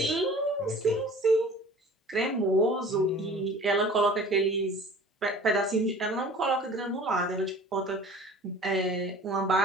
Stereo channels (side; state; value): both; normal; correlation 0.45